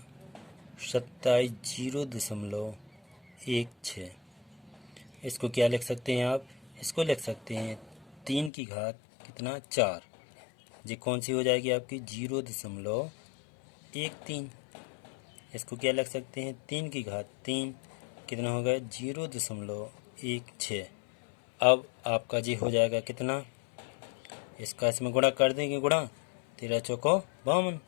27 0.16। इसको क्या लिख सकते हैं आप इसको लिख सकते हैं 3 की घात कितना 4। ये कौन सी हो जाएगी आपकी 0.13। इसको क्या लिख सकते हैं, 3 की घात 3 कितना हो गया 0.16। अब आपका जी हो जाएगा कितना, इसका इसमें गुणा कर देंगे, गुणा 13 चौको 52,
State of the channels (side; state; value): right; drops out; at 8.5 s